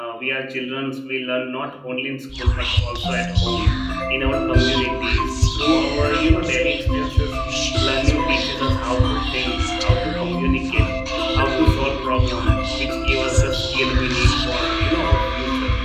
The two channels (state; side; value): identical; both; correlation 1.00